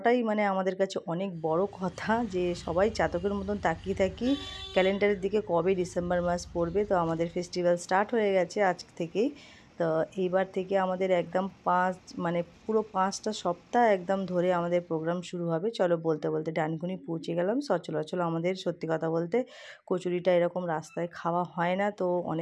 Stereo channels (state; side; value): identical; both; correlation 1.00